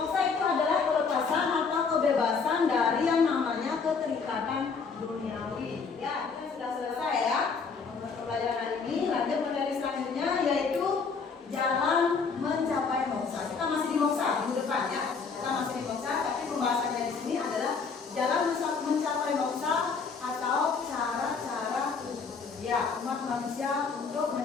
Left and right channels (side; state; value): right; quieter; 5.2 dB